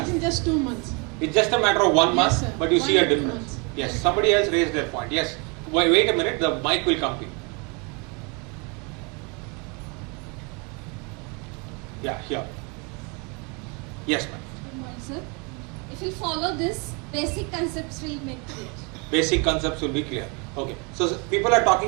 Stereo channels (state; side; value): quieter; left; 30.9 dB